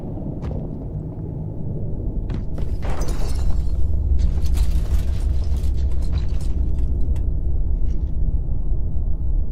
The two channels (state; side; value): identical; both; correlation 1.00